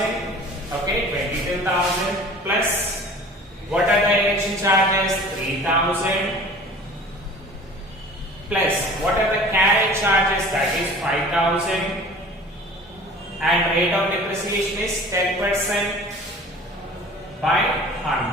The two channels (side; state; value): both; normal; correlation 0.44